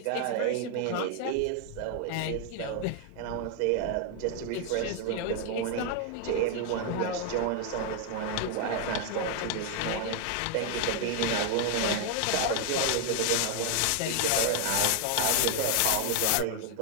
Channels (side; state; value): both; different; correlation 0.00